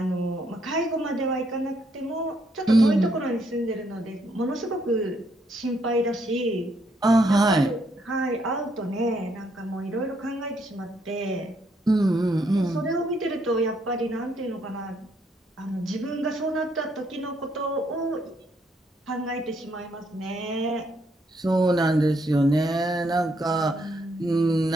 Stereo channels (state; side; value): normal; both; correlation 0.73